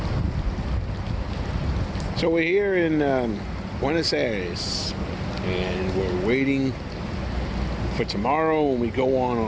So we're here in Buenos Aires, and we're waiting for tomorrow when we go on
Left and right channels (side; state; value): both; identical; correlation 1.00